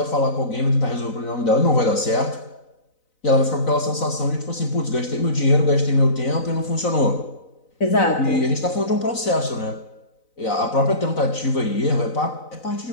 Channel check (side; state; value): right; late; 4.0 ms